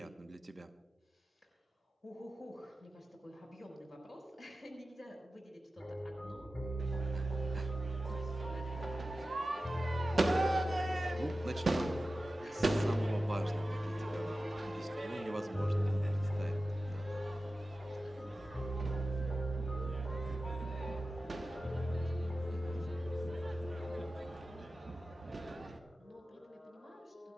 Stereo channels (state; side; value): normal; both; correlation 0.94